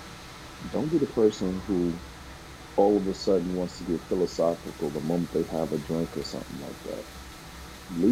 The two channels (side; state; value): both; identical; correlation 1.00